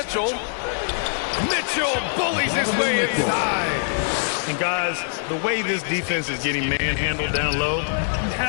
Mitchell bullies his way inside. And guys, the way this defense is getting manhandled down low, you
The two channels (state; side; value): silent; right; digital silence